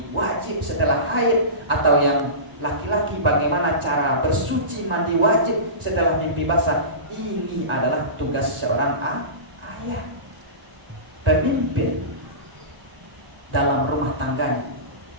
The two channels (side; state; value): left; late; 1.0 ms